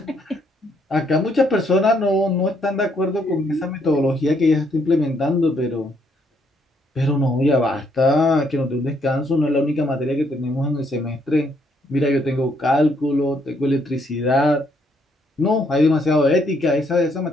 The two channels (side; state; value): both; normal; correlation 0.71